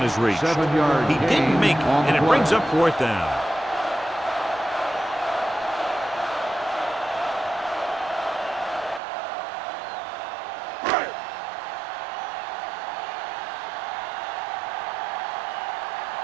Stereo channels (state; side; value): drops out; left; at 9.0 s